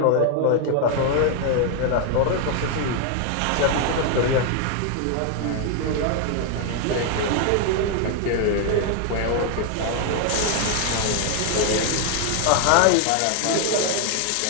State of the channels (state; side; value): different; both; correlation 0.00